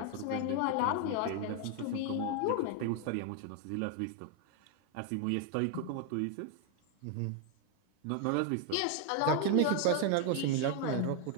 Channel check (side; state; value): both; different; correlation 0.00